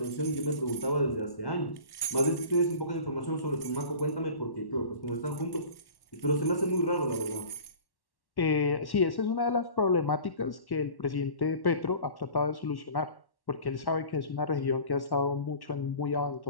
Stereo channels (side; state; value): right; late; 1.1 ms